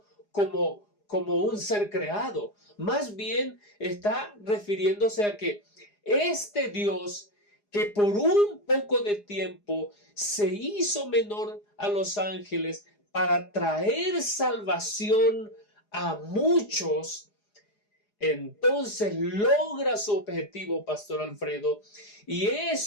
como un ser creado. Más bien está refiriéndose a que este Dios, que por un poco de tiempo se hizo menor a los ángeles para traer salvación a muchos, entonces logra su objetivo, Pastor Alfredo, y es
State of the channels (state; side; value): late; right; 4.8 ms